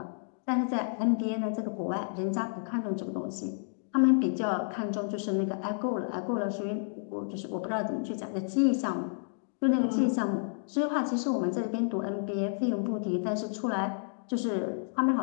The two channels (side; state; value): right; silent; digital silence